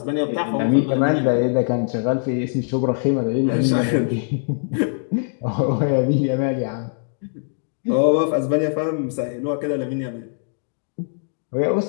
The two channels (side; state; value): right; silent; digital silence